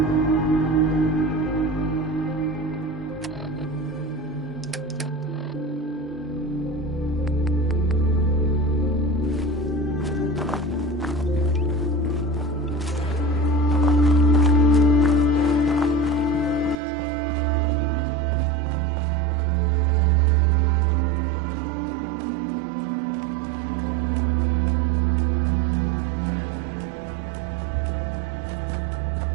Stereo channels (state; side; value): drops out; left; at 16.8 s